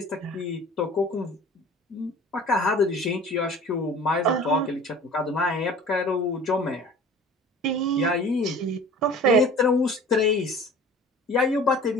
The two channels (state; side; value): normal; both; correlation 0.44